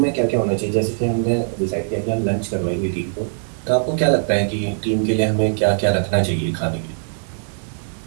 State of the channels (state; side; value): silent; left; digital silence